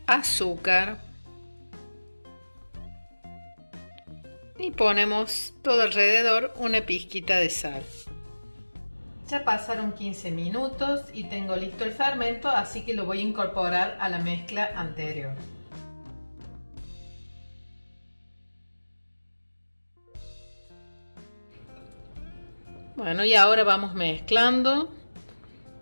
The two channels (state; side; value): inverted; both; correlation -1.00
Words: azúcar y ponemos todo alrededor una pizquita de sal. Ya pasaron 15 minutos y tengo listo el fermento, así que lo voy a incorporar a la mezcla anterior. Bueno, y ahora vamos mezclando.